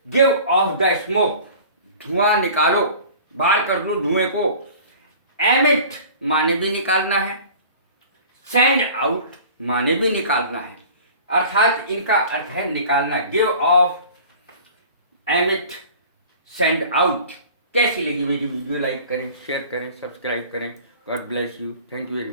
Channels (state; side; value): inverted; both; correlation -0.44